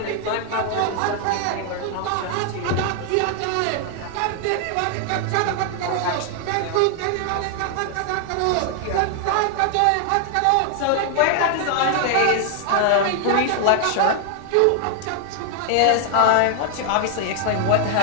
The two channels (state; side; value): different; both; correlation 0.00